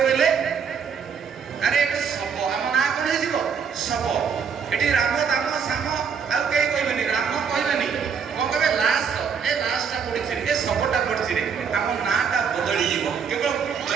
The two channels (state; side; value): quieter; left; 6.5 dB